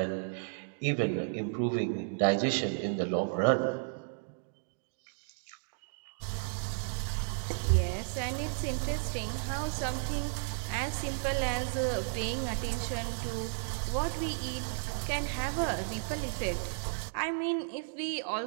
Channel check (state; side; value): silent; left; digital silence